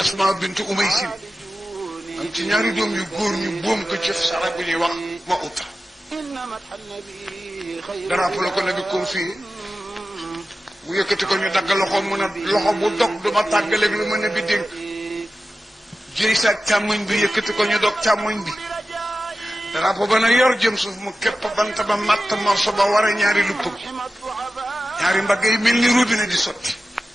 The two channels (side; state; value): both; normal; correlation 0.94